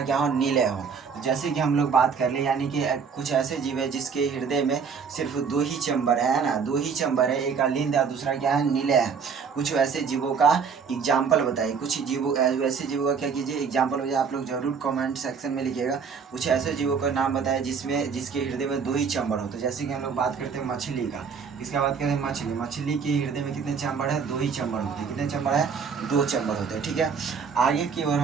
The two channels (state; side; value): quieter; left; 6.0 dB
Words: क्या हो, नीले हो। जैसे कि हम लोग बात कर ले, यानी कि कुछ ऐसे जीव है जिसके हृदय में सिर्फ 2 ही चैम्बर है ना, 2 ही चैम्बर है, एक अलिंद और दूसरा क्या है, नीले है। कुछ वैसे जीवों का एग्जाम्पल बताइए, कुछ जीवों वैसे जीवों का क्या कीजिए, एग्जाम्पल हो जाए, आप लोग जरूर कमेंट सेक्शन में लिखिएगा। कुछ ऐसे जीवों का नाम बताए जिसमें जिसके हृदय में 2 ही चैम्बर हो। तो जैसे कि हम लोग बात करते हैं मछली का, इसका बात करें मछली, मछली के हृदय में कितने चैम्बर है, 2 ही चैम्बर होते हैं। कितने चैम्बर है, 2 चैम्बर होते हैं। ठीक है, आगे की ओर